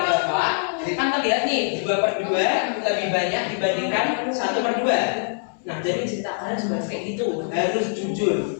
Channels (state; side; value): silent; right; 63 dB below the other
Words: Bapak. Kan terlihat nih 2/2 lebih banyak dibandingkan 1/2. Nah, jadi cerita kalian juga kayak gitu, harus jujur.